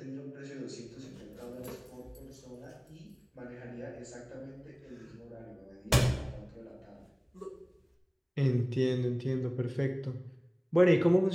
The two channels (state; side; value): identical; both; correlation 1.00